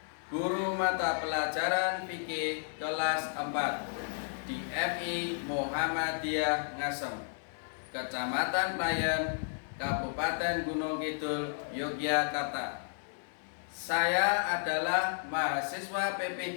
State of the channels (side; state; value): right; silent; digital silence